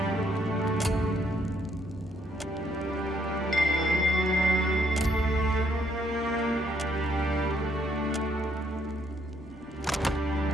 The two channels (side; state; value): both; normal; correlation 0.71